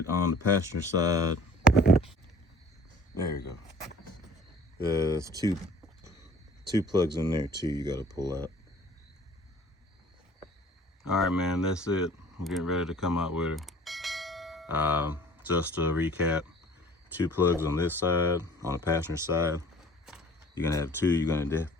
on the passenger side, there you go. There's two 2 plugs in there too you got to pull out. All right, man, that's it. I'm getting ready to come out with her. Just to recap, 2 plugs on this side, on the passenger side. You're gonna have 2. You're gonna have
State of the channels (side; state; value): both; normal; correlation 0.49